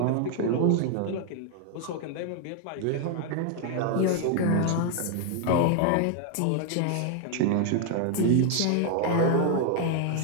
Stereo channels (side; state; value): both; different; correlation 0.00